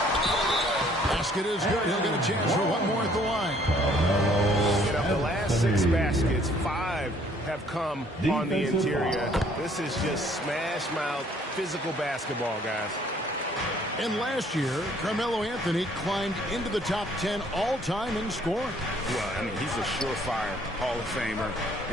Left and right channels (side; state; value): both; normal; correlation 0.61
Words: Basket is good. He'll get a chance for one more at the line. And of the last 6 baskets, 5 have come on the interior. This is just smash-mouth physical basketball, guys. And last year, Carmelo Anthony climbed into the top 10 all-time in scoring. Well, I mean, he's a surefire Hall of Famer,